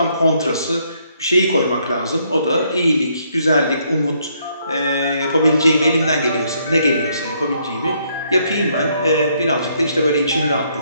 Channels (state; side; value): inverted; both; correlation -0.71